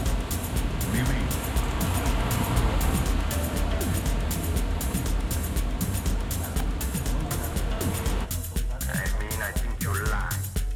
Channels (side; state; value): both; identical; correlation 1.00